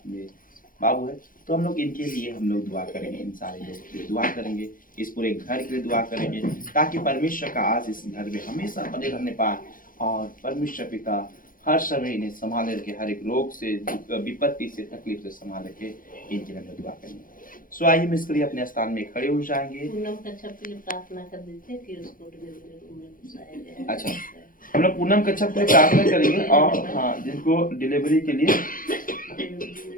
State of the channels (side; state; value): right; late; 0.40 ms